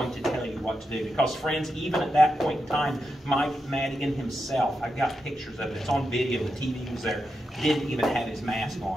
to tell you what to do. Because, friends, even at that point in time, Mike Madigan himself, I've got pictures of it, it's on video, the TV was there, didn't even have his mask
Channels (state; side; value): normal; both; correlation 0.87